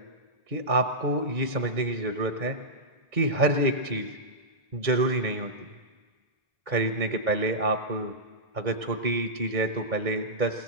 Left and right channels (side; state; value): left; late; 1.9 ms